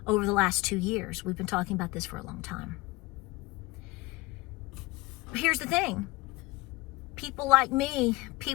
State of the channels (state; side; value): quieter; right; 21.4 dB